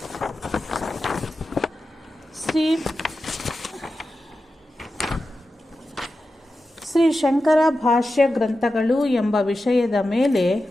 ಶ್ರೀ ಶಂಕರ ಭಾಷ್ಯ ಗ್ರಂಥಗಳು ಎಂಬ ವಿಷಯದ ಮೇಲೆ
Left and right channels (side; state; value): both; normal; correlation 0.92